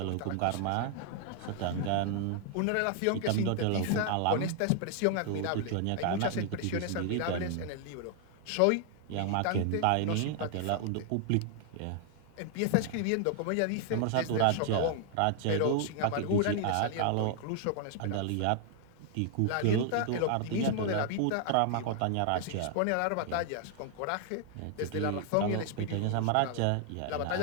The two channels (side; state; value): both; different; correlation 0.00